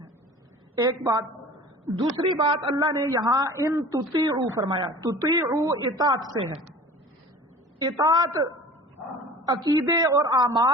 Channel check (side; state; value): both; normal; correlation 0.42